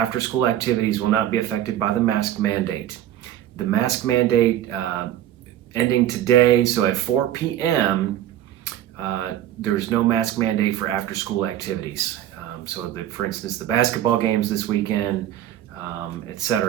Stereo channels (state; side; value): quieter; left; 12.1 dB